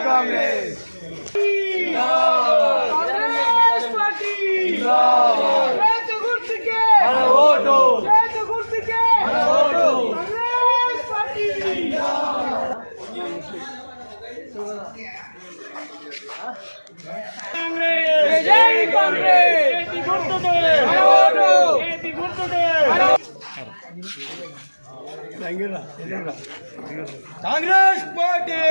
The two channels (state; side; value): inverted; both; correlation -1.00